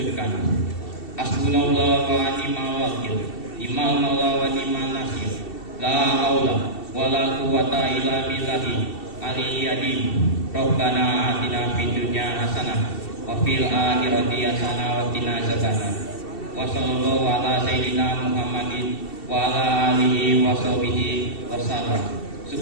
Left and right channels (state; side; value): late; right; 2.7 ms